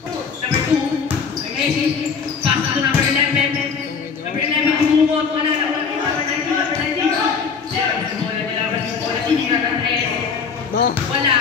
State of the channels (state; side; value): quieter; right; 5.8 dB